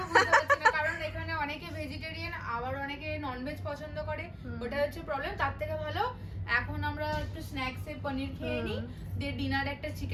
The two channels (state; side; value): identical; both; correlation 1.00